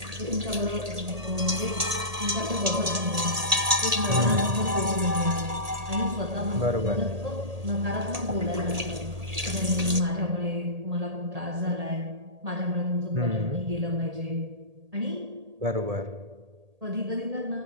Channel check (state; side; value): late; left; 1.8 ms